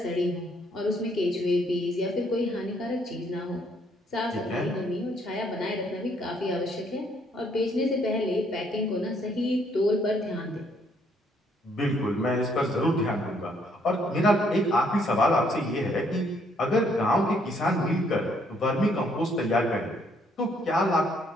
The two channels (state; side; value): normal; both; correlation 0.68